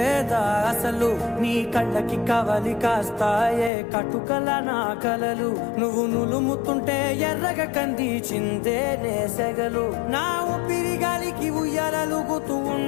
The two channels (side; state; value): right; drops out; at 3.7 s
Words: అసలు. నీ కళ్ళకి కవలి కాస్తాయే కటుకల నా కలలు, నువ్వు నులుముతుంటే ఎర్రగ కంది చిందే నేసెగలు. నా ఊపిరి గాలికి ఉయ్యాలలుగుతూ